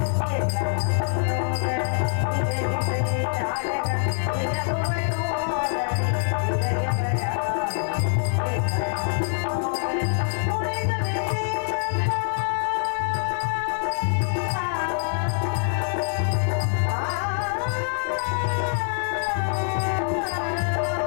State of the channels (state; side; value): silent; right; 56 dB below the other